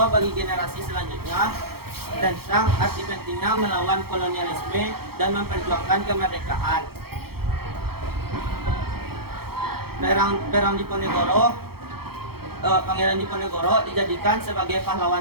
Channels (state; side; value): late; left; 0.95 ms